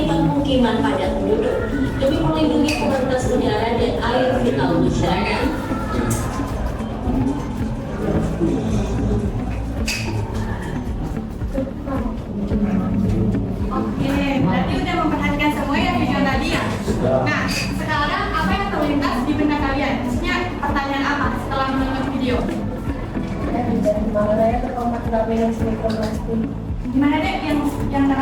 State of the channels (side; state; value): both; identical; correlation 1.00